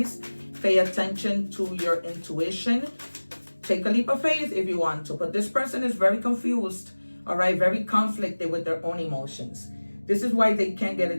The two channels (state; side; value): inverted; both; correlation -1.00